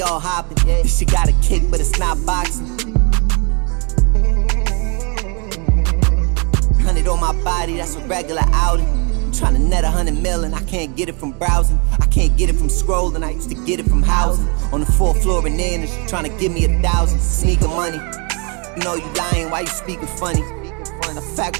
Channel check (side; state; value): left; quieter; 33.1 dB